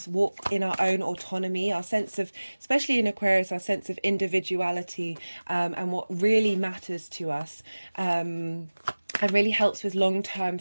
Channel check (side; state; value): both; inverted; correlation -1.00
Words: walk in our own autonomy, our sense of, especially in Aquarius, our sense of individuality, and what really matters to us. And really helps with long-term